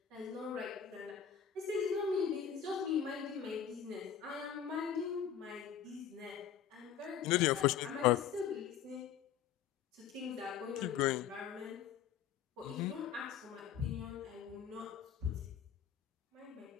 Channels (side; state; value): right; quieter; 8.8 dB